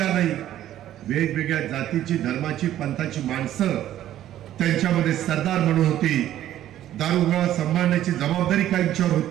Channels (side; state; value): left; quieter; 12.4 dB